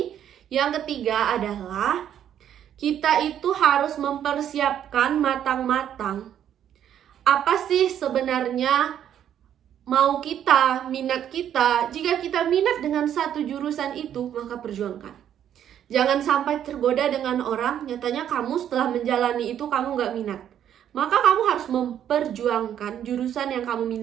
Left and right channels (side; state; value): left; quieter; 10.0 dB